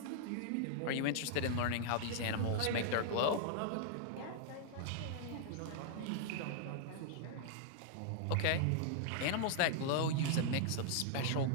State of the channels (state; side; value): different; both; correlation -0.01